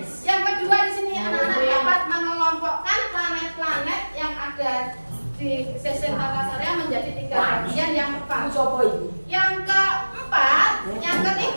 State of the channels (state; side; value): inverted; both; correlation -1.00